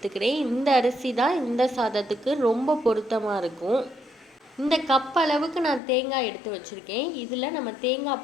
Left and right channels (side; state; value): right; drops out; at 5.8 s